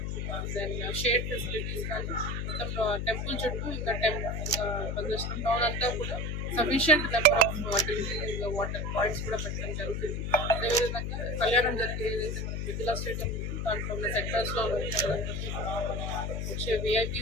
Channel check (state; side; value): noise; left; hum, 2 dB below the sound